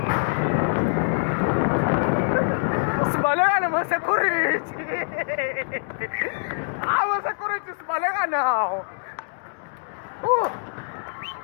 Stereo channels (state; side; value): silent; right; digital silence